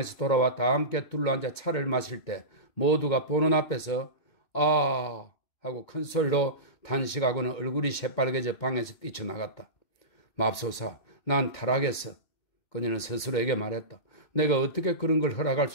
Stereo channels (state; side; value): late; right; 2.2 ms